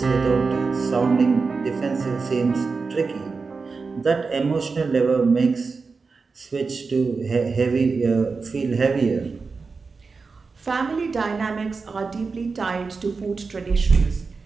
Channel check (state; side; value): quieter; left; 4.5 dB